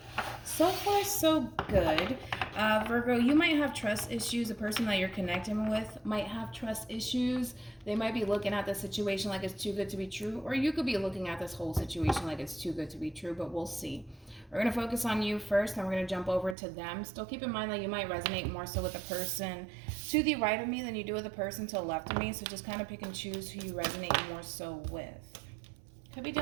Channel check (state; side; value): drops out; left; at 16.6 s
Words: So far, so good. Virgo, you might have trust issues. The person that you're connecting with might have trust issues. They might be looking at the situation like it's too good to be true, or you could be looking at this whole situation like it's too good to be true, but we'll see. We're going to focus on you first, and we're going to jump over to them. Still keep in mind that you might resonate more so with the person to the right of me than you do with the person to the left of me, so just kind of pick and choose who you resonate more so with. Could be